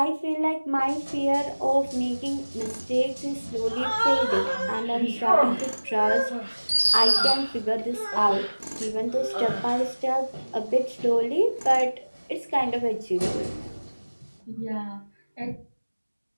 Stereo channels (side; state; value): both; inverted; correlation -1.00